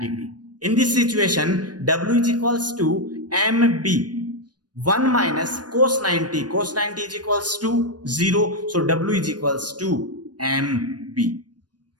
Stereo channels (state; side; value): late; left; 0.69 ms